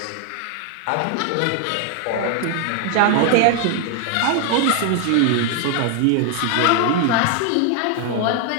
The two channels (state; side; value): different; both; correlation 0.00